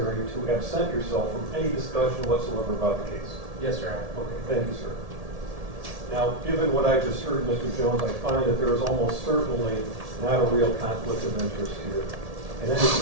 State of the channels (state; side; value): late; left; 1.7 ms